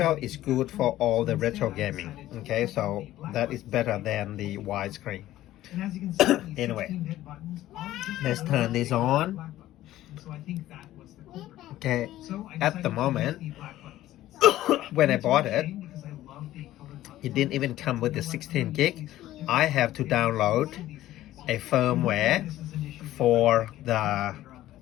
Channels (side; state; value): right; quieter; 14.5 dB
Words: is good for all the retro gaming. Okay, so that is better than the widescreen. Anyway, let's turn this on. Okay, at the moment, when I bought it, it didn't even come with the 16 gig. I have to download a firmware for the